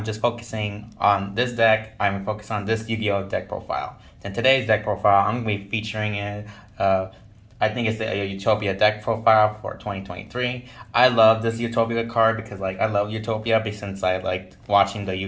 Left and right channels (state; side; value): identical; both; correlation 1.00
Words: just focusing on this deck. I'm focused on this Yu-Gi-Oh deck profile. In today's deck profile, I'm going to be featuring it. I think it's the Utopia deck profile for 2023. I love this Utopia card because like I love Utopia since I liked watching the